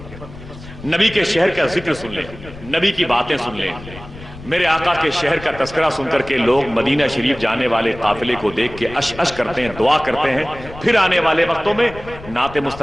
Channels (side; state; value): left; noise; rumble, 16 dB below the sound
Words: نبی کے شہر کا ذکر سن لیں، نبی کی باتیں سن لیں، میرے آقا کے شہر کا تذکرہ سن کر کے لوگ مدینہ شریف جانے والے قافلے کو دیکھ کے اش اش کرتے ہیں، دعا کرتے ہیں، پھر آنے والے وقتوں میں نعت